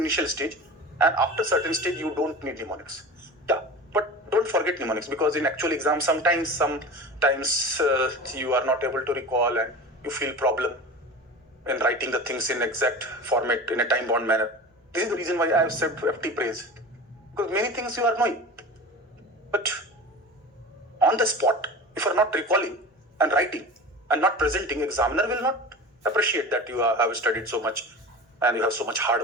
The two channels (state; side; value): normal; both; correlation 0.33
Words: stage, and after certain stage, you don't need mnemonics. Yeah, but don't forget mnemonics, because in actual exam, sometimes you are not able to recall and you feel problem in writing the things in exact format in a time-bound manner. This is the reason why I have said FT praise, because many things you are knowing, but on the spot, if you are not recalling and writing, and not presenting, examiner will not appreciate that you have studied so much and you have so much